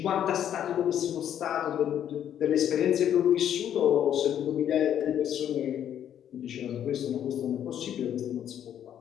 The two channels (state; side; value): quieter; right; 10.0 dB